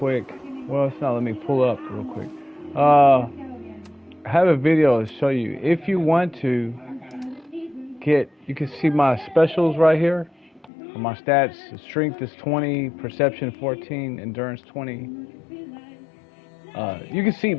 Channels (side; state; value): right; drops out; at 10.7 s